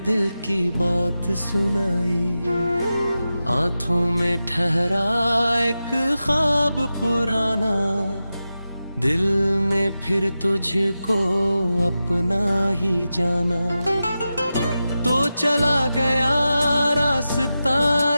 दिल की बात सुनाई। आंखों में ठहरा एक ख्वाब पुराना, दिल में फिर तुझको अपना ही जाना। तो चला गया रास्ता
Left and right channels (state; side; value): inverted; both; correlation -0.92